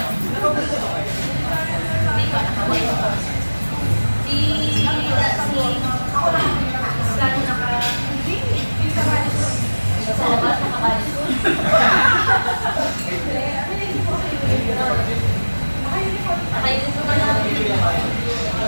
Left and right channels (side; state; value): both; inverted; correlation -1.00